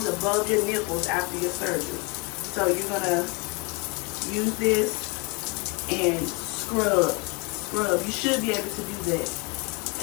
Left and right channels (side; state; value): right; quieter; 30.3 dB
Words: above your nipples after your surgery, so you're gonna use this and scrub. You should be able to do that.